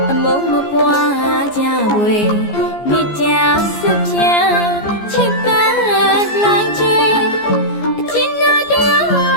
ပွားကြွယ်မိကြဆုဖြံချစ်ပန်းလိုင်းကျွေအကျဉ်းနာတရာ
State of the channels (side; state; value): right; late; 14 ms